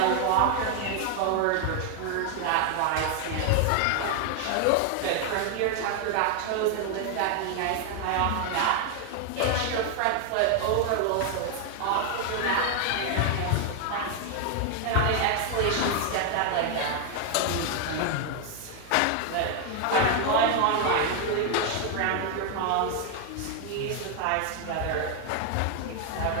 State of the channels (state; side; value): different; both; correlation 0.00